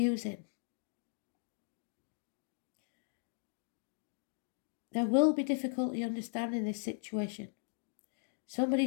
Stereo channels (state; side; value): silent; right; digital silence